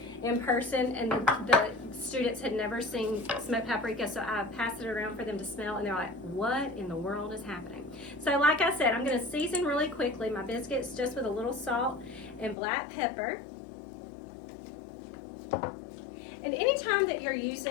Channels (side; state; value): right; drops out; at 12.6 s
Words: in person, and the students had never seen smoked paprika, so I passed it around for them to smell, and they're like, what in the world is happening? So like I said, I'm going to season really quickly my biscuits just with a little salt and black pepper. And anytime that you're